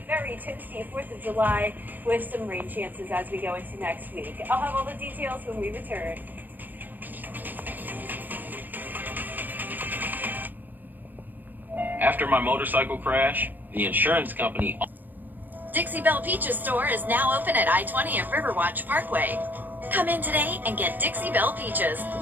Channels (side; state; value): left; late; 0.089 ms